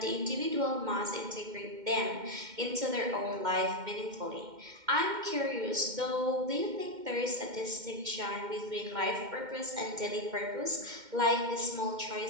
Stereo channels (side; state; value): left; late; 2.1 ms